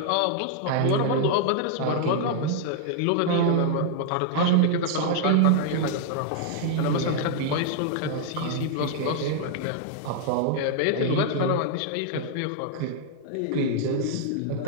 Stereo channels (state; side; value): different; both; correlation -0.01